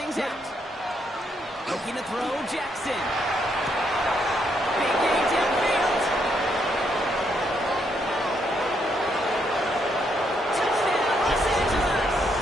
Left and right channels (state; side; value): normal; both; correlation 0.75